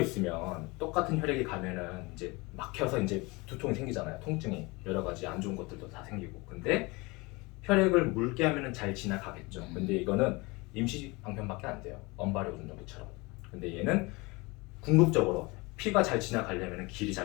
똑같은 혈액이 가면은 이제 막혀서 이제 두통이 생기잖아요. 통증이 여러 가지 안 좋은 것들도 다 생기고. 근데 혈액을 묽게 하면은 잘 지나가겠죠. 근데 이거는 임시 방편밖에 안 돼요. 언발의 오줌정기처럼. 근데 얘는 궁극적으로 피가 잘 지나가려면 길이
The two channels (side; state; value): right; quieter; 25.0 dB